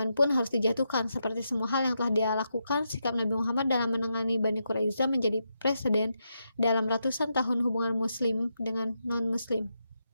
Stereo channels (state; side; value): inverted; both; correlation -0.84